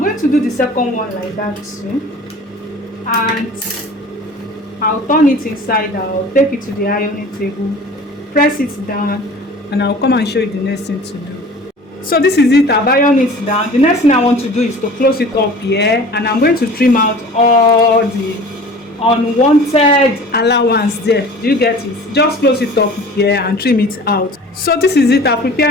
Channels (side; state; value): both; normal; correlation 0.43